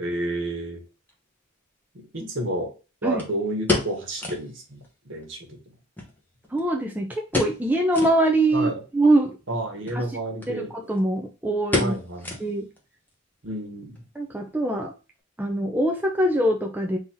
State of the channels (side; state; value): both; normal; correlation 0.63